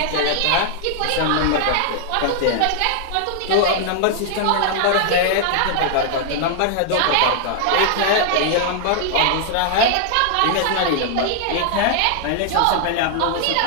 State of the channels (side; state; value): both; different; correlation 0.00